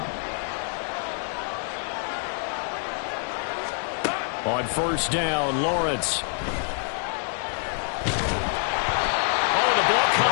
On first down, Lawrence. Oh, the ball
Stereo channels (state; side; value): silent; right; 61 dB below the other